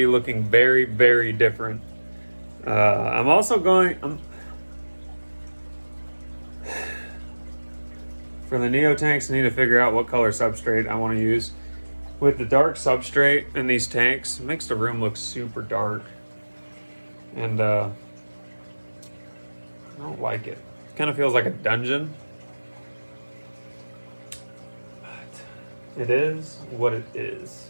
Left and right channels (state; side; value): inverted; both; correlation -1.00